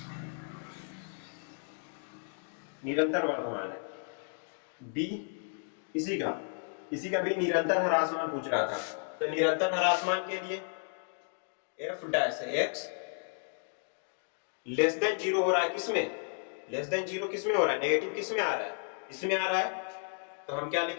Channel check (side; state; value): right; silent; 56 dB below the other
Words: निरंतर वर्धमान है। b इसी का भी निरंतर ह्रासमान पूछ रहा था, तो निरंतर ह्रासमान के लिए f' <0 हो रहा है, किसमें <0 किसमें हो रहा है, नेगेटिव किसमें आ रहा है, इसमें आ रहा है, तो हम क्या